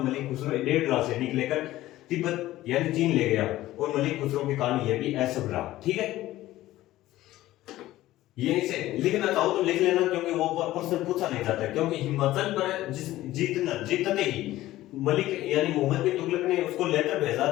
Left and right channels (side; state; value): right; quieter; 15.6 dB